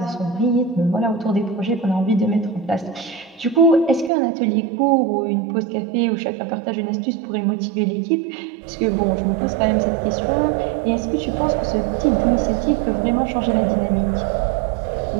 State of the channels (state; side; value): drops out; left; at 4.1 s